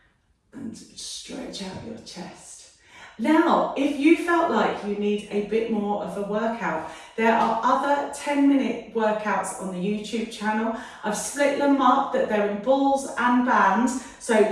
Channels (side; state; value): both; identical; correlation 1.00